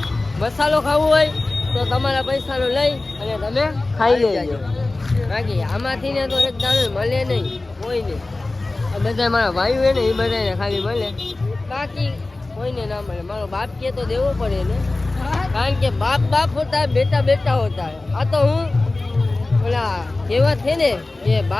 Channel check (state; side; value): quieter; right; 3.1 dB